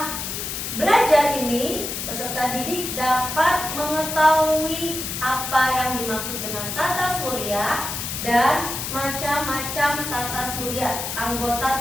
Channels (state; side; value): noise; left; hiss, 5 dB below the sound